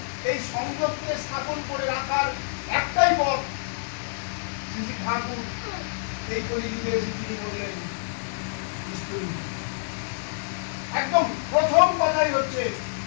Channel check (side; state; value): right; silent; 60 dB below the other